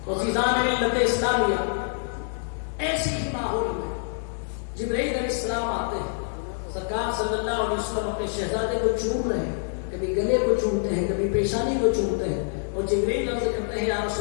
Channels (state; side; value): silent; right; digital silence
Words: تو عزیزان ملت اسلامیہ، ایسی ہی ماحول میں جبرائیل علیہ السلام آتے ہیں. سرکار صلی اللہ علیہ وسلم اپنے شہزادے کو چوم رہے ہیں، کبھی گلے کو چومتے ہیں، کبھی پیشانی کو چومتے ہیں. اور جبرائیل عرض کرتے ہیں یا